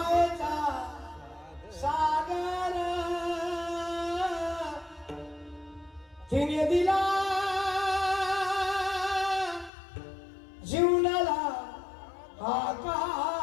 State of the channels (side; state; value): right; drops out; at 9.7 s